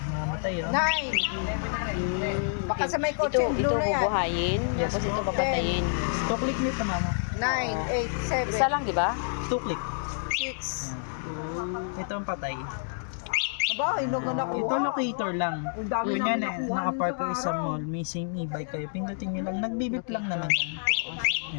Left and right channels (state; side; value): silent; right; digital silence